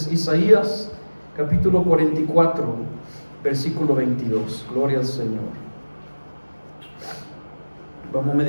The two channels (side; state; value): both; inverted; correlation -1.00